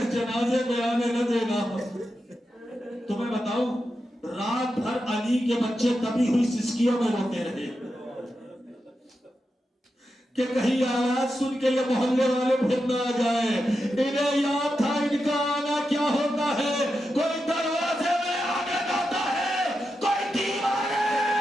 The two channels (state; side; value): normal; both; correlation 0.88